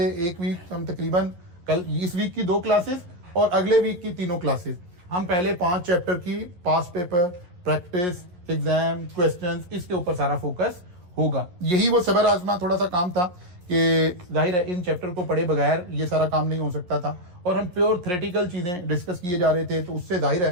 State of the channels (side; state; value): left; late; 11 ms